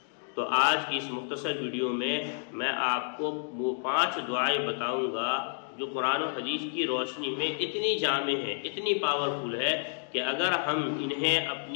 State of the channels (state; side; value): silent; right; digital silence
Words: تو آج کی اس مختصر ویڈیو میں آپ کو وہ 5 دعائیں بتاؤں گا جو قرآن و حدیث کی روشنی میں اتنی جامع ہے، اتنی پاورفل ہے کہ اگر ہم انہیں